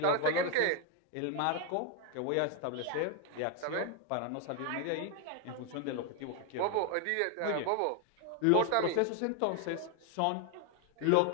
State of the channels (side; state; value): both; different; correlation 0.01